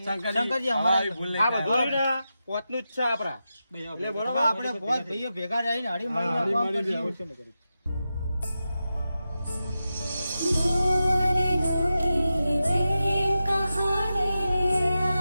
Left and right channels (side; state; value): both; inverted; correlation -0.91